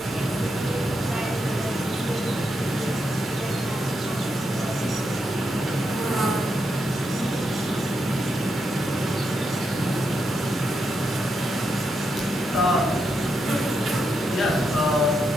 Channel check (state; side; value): normal; both; correlation 0.83